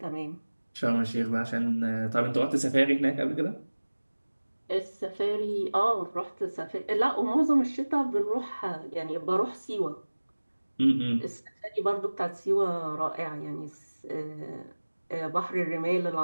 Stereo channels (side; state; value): both; inverted; correlation -1.00